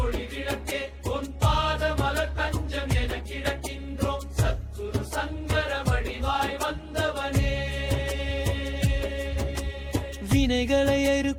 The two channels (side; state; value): both; identical; correlation 1.00